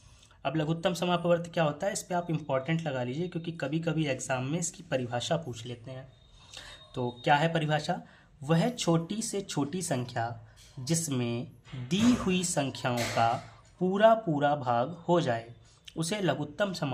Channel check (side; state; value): both; identical; correlation 1.00